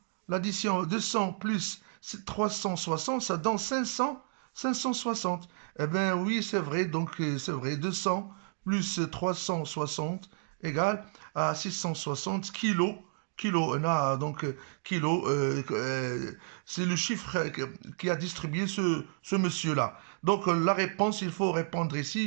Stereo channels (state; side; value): silent; left; digital silence